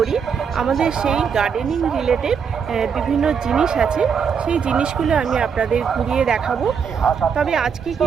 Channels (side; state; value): left; quieter; 6.7 dB